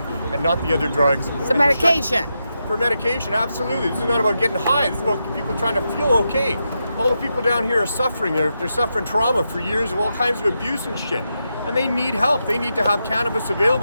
and not the other drugs. It's a medication. For medication, absolutely. This is not about getting high. This is about people trying to feel okay. All the people down here are suffering. They're suffering trauma for years of all kinds of abuse and shit. And they need help. They need to have cannabis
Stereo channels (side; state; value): both; inverted; correlation -0.86